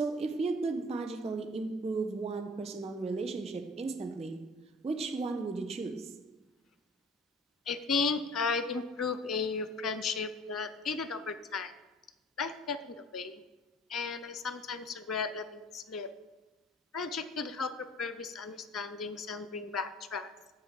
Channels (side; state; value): both; normal; correlation 0.47